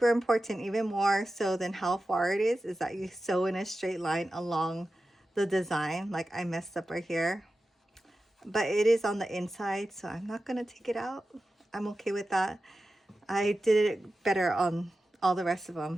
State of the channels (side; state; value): both; normal; correlation 0.93